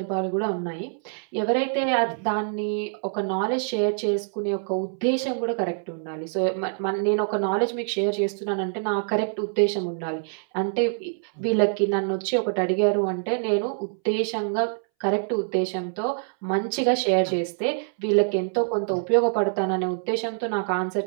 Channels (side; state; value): left; silent; 62 dB below the other